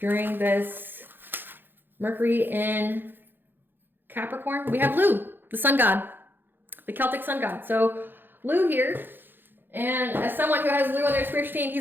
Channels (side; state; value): left; late; 0.097 ms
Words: this Mercury in Capricorn? We have Lu, the sun god, the Celtic sun god. So Lu here, and as someone who has Lu on their spiritual team,